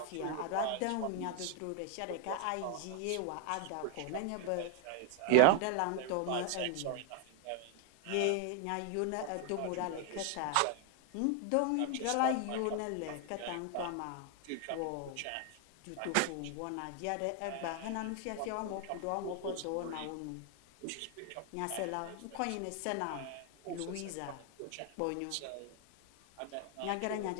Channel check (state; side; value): different; both; correlation 0.00